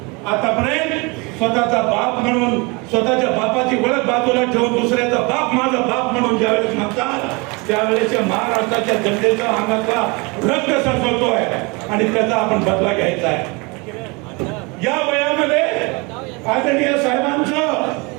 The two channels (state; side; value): quieter; left; 28.1 dB